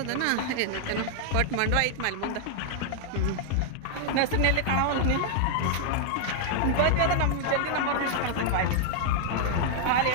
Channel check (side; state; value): both; different; correlation 0.00